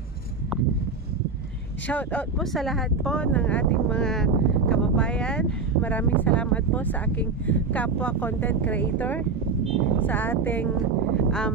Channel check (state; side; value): quieter; left; 4.5 dB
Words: Shout out po sa lahat po ng ating mga kababayan. Maraming salamat po sa aking kapwa content creator, sa ating